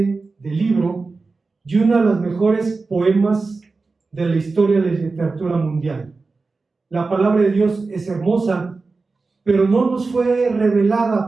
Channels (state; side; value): quieter; left; 3.9 dB